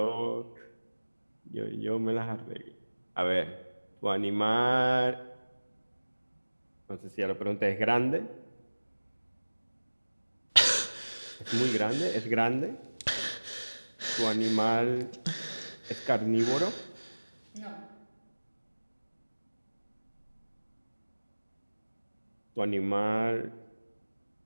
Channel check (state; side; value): inverted; both; correlation -1.00